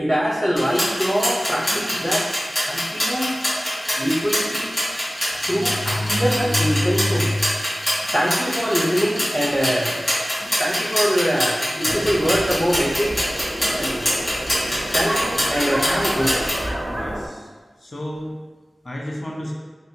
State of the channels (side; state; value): both; normal; correlation 0.96